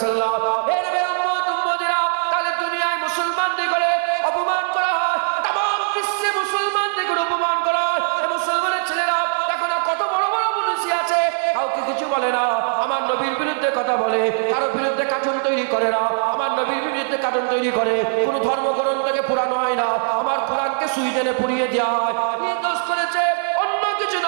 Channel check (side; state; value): left; silent; digital silence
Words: আলাইহি ওয়াসাল্লাম। তাহলে দুনিয়ায় মুসলমানদের করে অপমান করা হয়, তামাম বিশ্বে মুসলমানদের করে অপমান করা হয়। মুসলমানের ছেলেরা দেখো না কত বড় বড় পুলিশ আছে, কাউকে কিছু বলে না। আমার নবীর বিরুদ্ধে কথা বলে, কারো বিরুদ্ধে কার্টুন তৈরি করে না। আমার নবীর বিরুদ্ধে কার্টুন তৈরি করে, কোন ধর্মগ্রন্থকে পুরানো হয় না। আমার কোরআনকে সুইডেনে পুড়িয়ে দেওয়া হয়। কি দোষ করেছে? অন্য কিছু